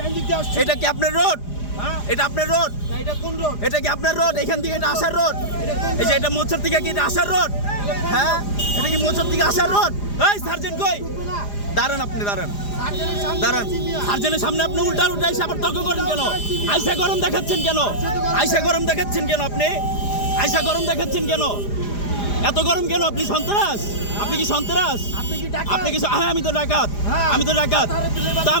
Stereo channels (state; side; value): late; right; 4.9 ms